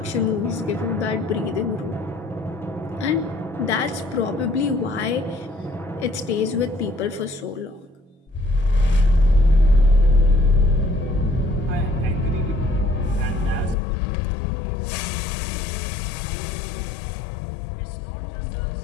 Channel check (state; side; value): drops out; right; at 13.8 s